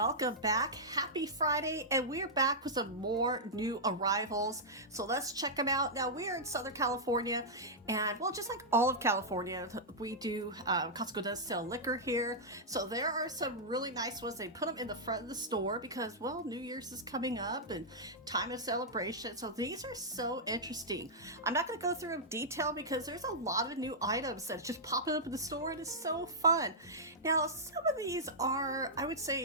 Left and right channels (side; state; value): both; normal; correlation -0.10